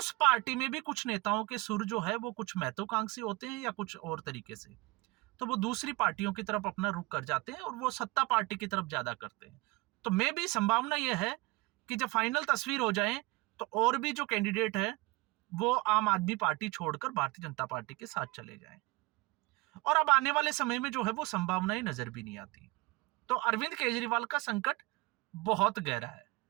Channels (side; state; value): left; quieter; 23.5 dB